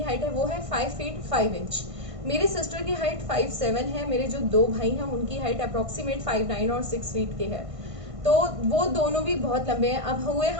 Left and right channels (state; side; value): late; left; 1.5 ms